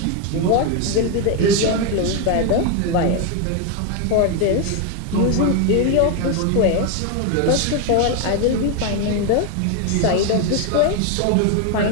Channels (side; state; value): both; different; correlation 0.01